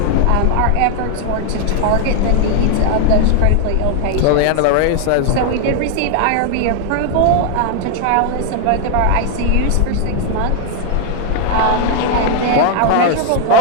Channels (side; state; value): both; different; correlation 0.00